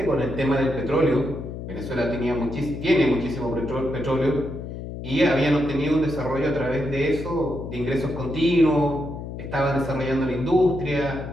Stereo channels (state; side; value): noise; left; hum, 8 dB below the sound